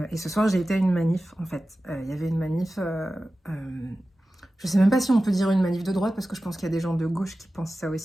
et ce soir j'ai été à une manif en fait. Il y avait une manif, je sais même pas si on peut dire une manif de droite parce que je pense qu'il y a des gens de gauche qui pensent ça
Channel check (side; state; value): both; normal; correlation 0.95